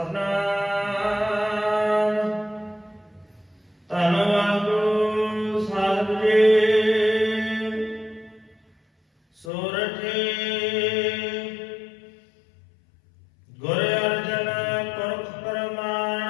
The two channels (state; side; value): drops out; right; at 9.5 s